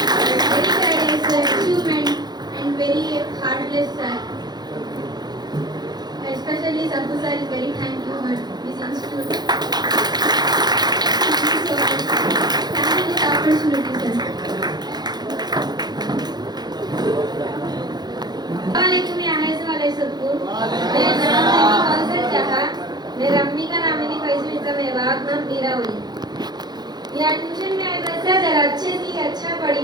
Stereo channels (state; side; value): late; left; 0.20 ms